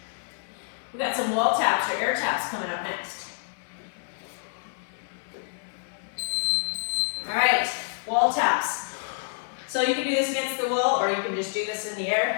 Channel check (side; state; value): right; silent; 60 dB below the other